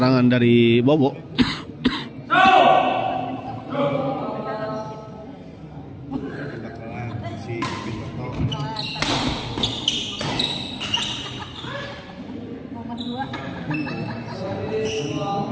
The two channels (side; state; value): both; identical; correlation 1.00